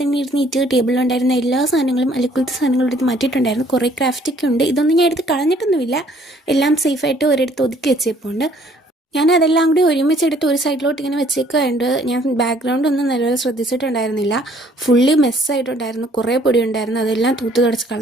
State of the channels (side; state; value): both; normal; correlation 0.60